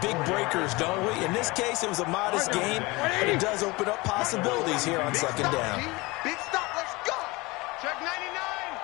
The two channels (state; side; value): quieter; right; 23.3 dB